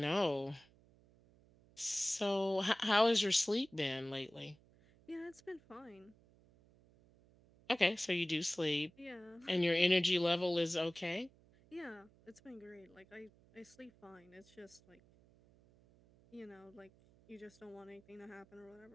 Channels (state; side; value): noise; right; hum, 28 dB below the sound